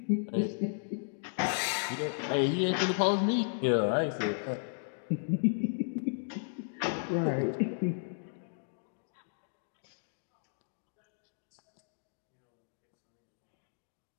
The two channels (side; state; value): right; silent; digital silence